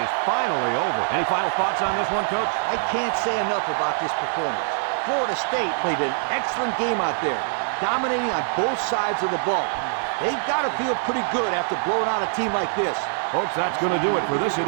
finally over. Any final thoughts on this one, Coach? I can't say enough about this performance. Florida State played an excellent game out there, dominating on both sides of the ball. They've got to feel pretty good after blowing out a team like this. Folks, that's going to do it for this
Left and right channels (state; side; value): silent; left; digital silence